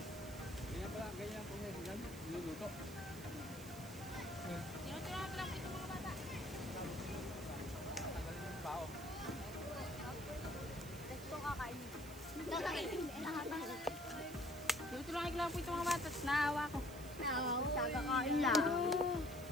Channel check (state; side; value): noise; right; hiss, 15 dB below the sound